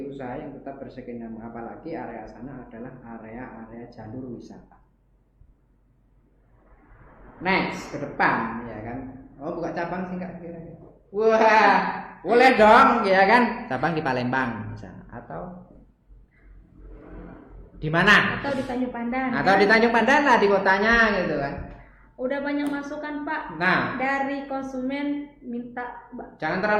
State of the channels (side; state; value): both; identical; correlation 1.00